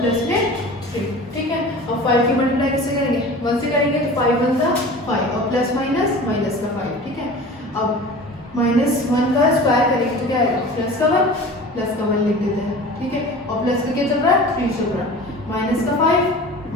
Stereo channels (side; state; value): both; normal; correlation 0.38